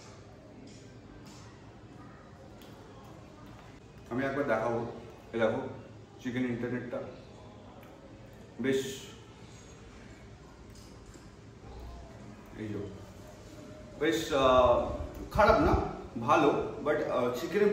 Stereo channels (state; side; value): identical; both; correlation 1.00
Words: আমি একবার দেখাবো, দেখো চিকেন ইন্টারনেটটা বেশ, এই বেশ খারাপ না, ভালো, বাট চিকেনের